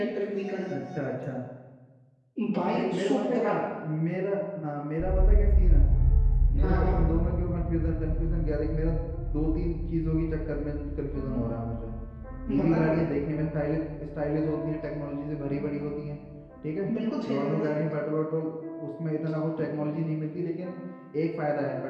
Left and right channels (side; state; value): both; identical; correlation 1.00